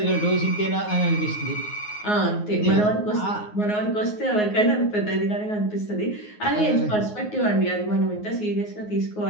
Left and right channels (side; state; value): right; late; 9.5 ms